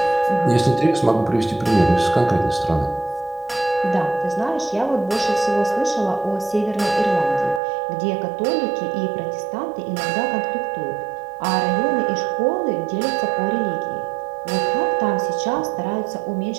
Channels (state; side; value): drops out; left; at 7.6 s